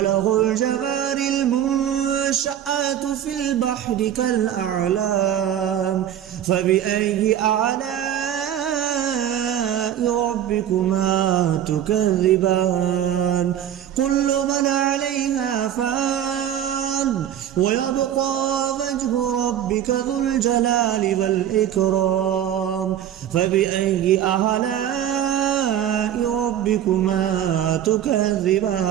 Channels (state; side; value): quieter; left; 10.5 dB